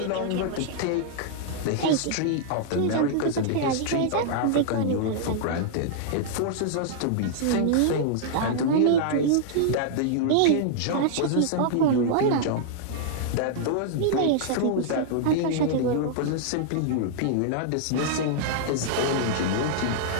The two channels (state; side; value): different; both; correlation -0.01